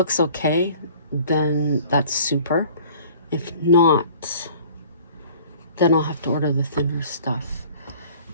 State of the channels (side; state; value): both; inverted; correlation -0.49